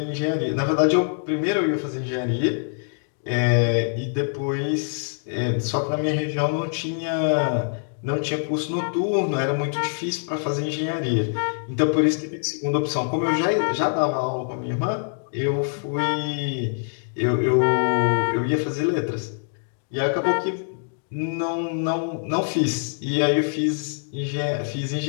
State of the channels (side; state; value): right; silent; digital silence